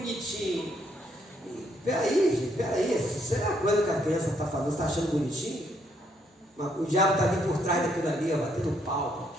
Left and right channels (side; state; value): both; normal; correlation 0.71